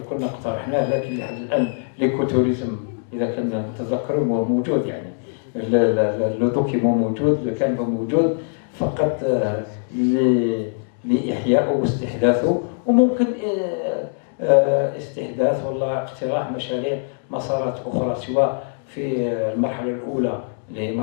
كنا اقترحناه، لكن لحد الآن ليكوتوريزم إذا كنا نتذكر هو موجود، يعني لو دوكيمون موجود، لو كان موجود فقط لإحيائه واستحداثه، وممكن استحداث ولا اقتراح مشاريع مسارات أخرى سواء في المرحلة الأولى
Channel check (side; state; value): right; silent; digital silence